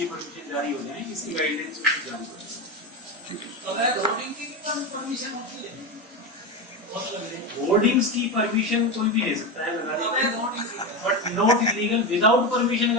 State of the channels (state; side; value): normal; both; correlation 0.16